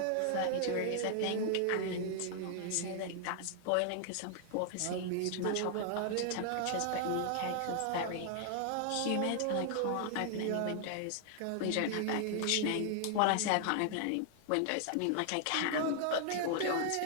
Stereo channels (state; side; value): different; both; correlation 0.00